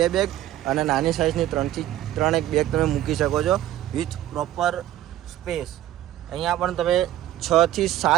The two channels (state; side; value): quieter; left; 13.3 dB